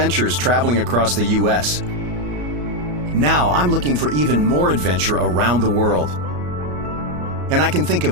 traveling across the U.S. Now I'm looking for even more adventure around the world. And I can think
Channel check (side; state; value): left; late; 34 ms